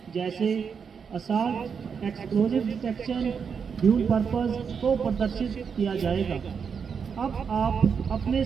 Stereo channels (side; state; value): left; quieter; 6.4 dB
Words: जैसे assault, explosive detection, dual purpose को प्रदर्शित किया जाएगा। अब आप अपने